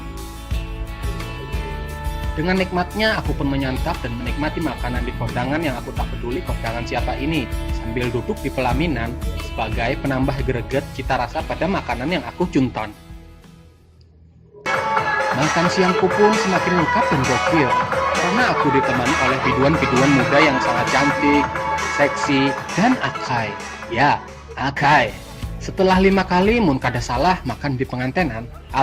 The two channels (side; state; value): both; identical; correlation 1.00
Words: Dengan nikmatnya aku pun menyantap dan menikmati makanan di kondangan yang aku tak peduli kondangan siapa ini, sambil duduk di pelaminan sebagai penambah greget cita rasa pada makanan yang aku cunton. Makan siangku pun semakin lengkap dan gokil, karena aku ditemani oleh biduan-biduan muda yang sangat cantik, seksi, dan akai. Ya, akai. Setelah 5 kali mun kada salah makan di pengantenan,